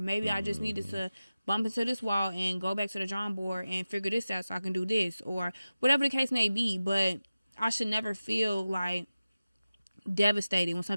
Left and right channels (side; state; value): both; inverted; correlation -0.95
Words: maybe I just needed to bump into this wall and go back to the drawing board and figure this out so I can do this, or whatever the case may be. But I should never feel like devastated when